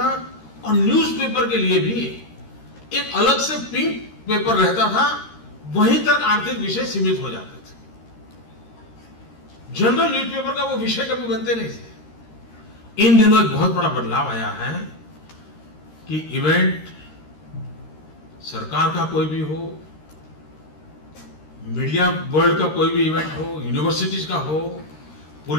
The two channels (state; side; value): late; right; 13 ms